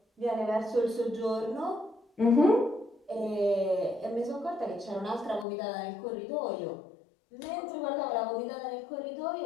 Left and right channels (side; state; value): right; drops out; at 5.5 s